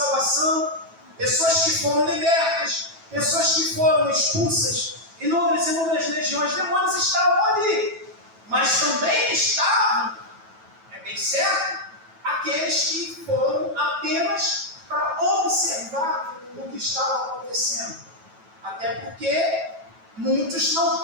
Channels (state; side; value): late; left; 9.1 ms